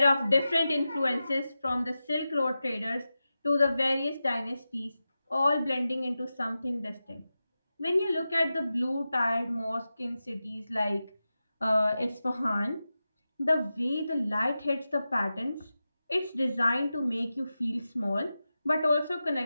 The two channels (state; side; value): inverted; both; correlation -0.93